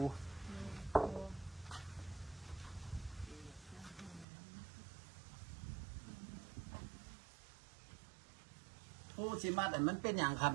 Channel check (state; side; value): drops out; left; at 4.2 s